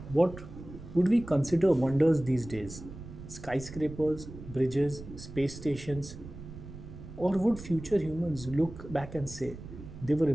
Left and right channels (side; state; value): right; noise; rumble, 13 dB below the sound